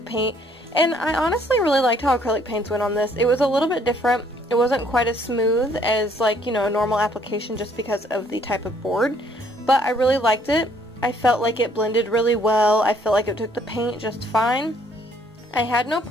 paint, and I honestly really liked how acrylic paints went on this. It was a little bit different. It wasn't quite as smooth as, like, you know, a normal application just because of the type of board. But I really liked it. I felt like it blended really well. I felt like it took the paint just fine. I had no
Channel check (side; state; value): both; normal; correlation 0.63